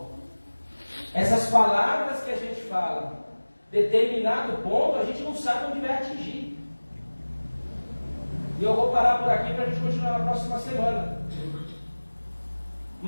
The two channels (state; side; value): inverted; both; correlation -1.00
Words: essas palavras que a gente fala, determinado ponto, a gente não sabe onde vai atingir. E eu vou parar por aqui para a gente continuar na próxima semana.